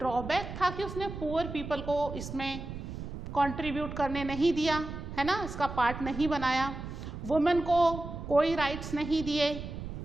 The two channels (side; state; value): right; noise; rumble, 8 dB below the sound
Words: था कि उसने पुअर पीपल को इसमें कंट्रीब्यूट करने नहीं दिया, है ना, इसका पार्ट नहीं बनाया। वुमेन को कोई राइट्स नहीं दिए,